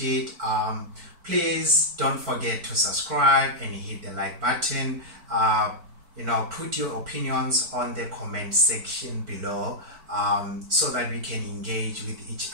Please don't forget to subscribe and hit the like button. Put your opinions on the comment section below, so that we can engage with each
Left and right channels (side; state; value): left; late; 4.5 ms